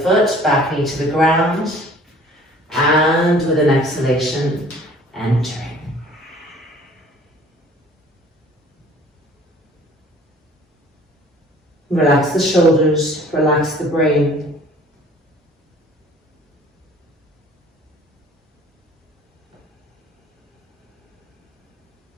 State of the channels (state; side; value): normal; both; correlation 0.52